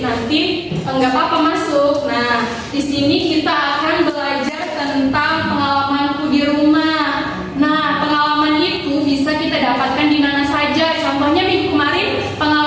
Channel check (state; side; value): identical; both; correlation 1.00